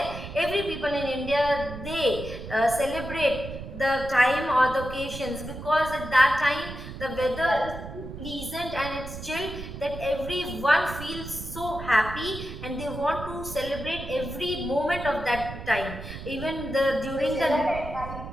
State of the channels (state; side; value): noise; right; rumble, 10 dB below the sound